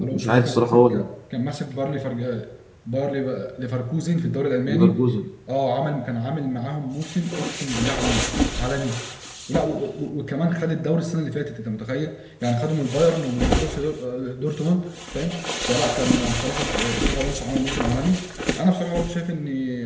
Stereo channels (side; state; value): both; identical; correlation 1.00